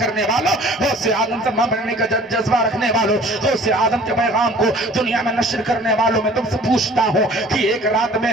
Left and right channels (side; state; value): both; normal; correlation 0.50